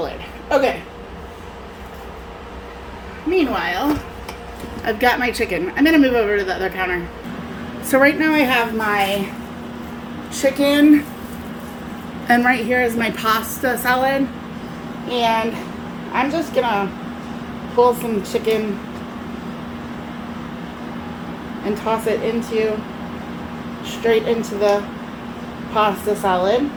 lid. Okay. Meanwhile, I've got my chicken. I'm gonna move over to the other counter. So right now I have my chicken, and right here is my pasta salad, and I'm just gonna pull some chicken and toss it straight into the pasta salad.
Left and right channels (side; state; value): both; identical; correlation 1.00